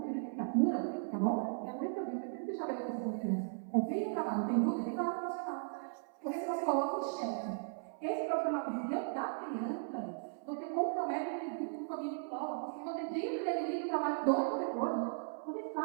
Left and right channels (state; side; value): silent; left; 53 dB below the other